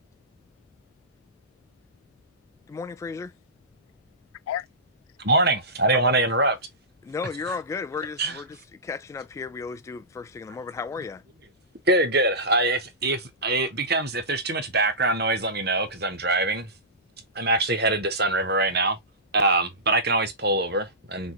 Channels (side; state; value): both; normal; correlation -0.19